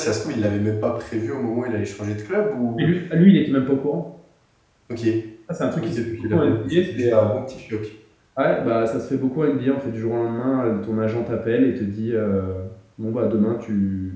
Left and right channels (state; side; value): identical; both; correlation 1.00